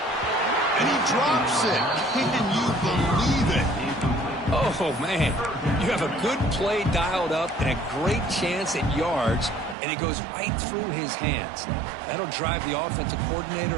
And he drops it. Can you believe it? Oh, man. You have a good play dialed up and a great chance at yards, and it goes right through his hands. That'll drive the offensive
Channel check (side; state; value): left; drops out; at 9.8 s